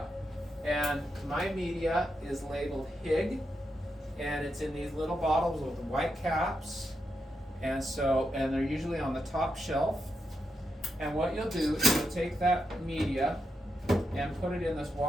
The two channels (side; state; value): both; normal; correlation 0.85